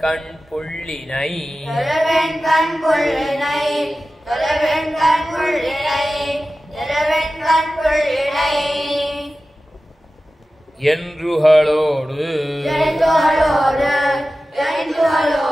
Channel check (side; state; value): both; normal; correlation 0.95